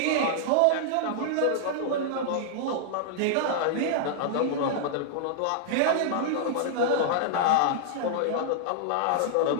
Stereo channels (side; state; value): both; different; correlation -0.01